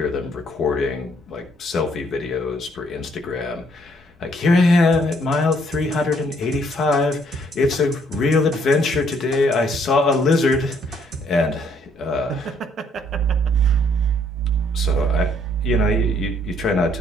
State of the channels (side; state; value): both; normal; correlation 0.66